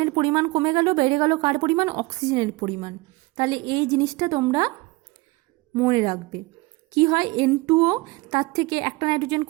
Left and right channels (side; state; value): left; quieter; 23.4 dB